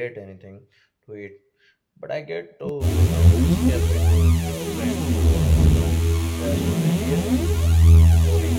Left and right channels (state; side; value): identical; both; correlation 1.00